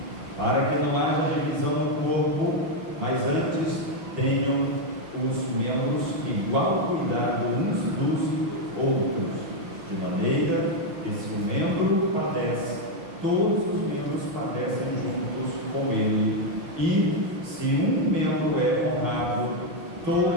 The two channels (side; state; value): left; late; 6.1 ms